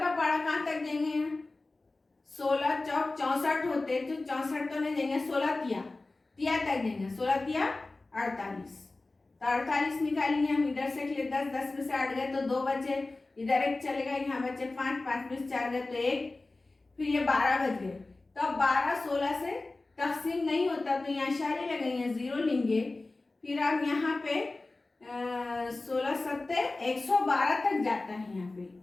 पहाड़ा कहाँ तक देंगे, 16 चौक 64 होते, तो 64 तो नहीं देंगे, 16 तिया तक देंगे, 16 तिया 48। तो 48 निकालेंगे हम, इधर से 10, 10 में से 8 गए, तो 2 बचे, इधर एक चलेगा, यहाँ बचे 5, 5 में से 4 गए, तो 1, फिर ये 12 बच गए। तो अब 12 16 से तकसीम नहीं होता, तो यहाँ इशारे लगाएंगे, 0 लेंगे। फिर अब यहाँ पे 16 7 112 तक जाता है। यहाँ पे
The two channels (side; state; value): right; quieter; 3.2 dB